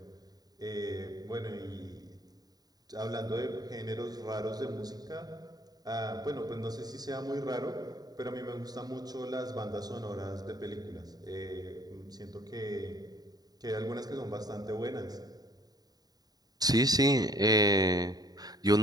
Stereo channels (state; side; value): late; left; 0.19 ms